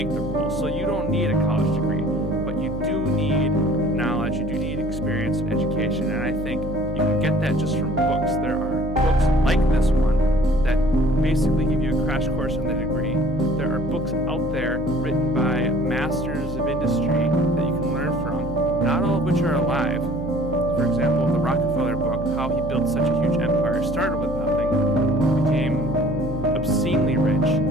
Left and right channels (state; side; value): noise; right; hum, 9 dB below the sound